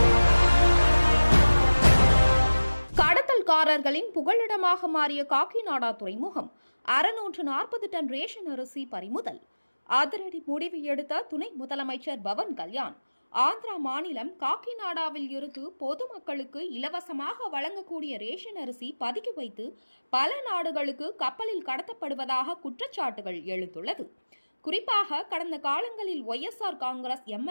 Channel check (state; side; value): inverted; both; correlation -1.00